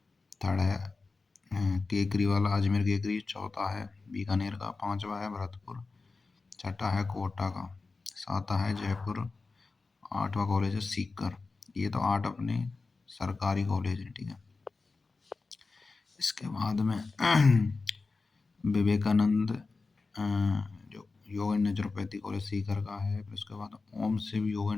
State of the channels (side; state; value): right; quieter; 4.0 dB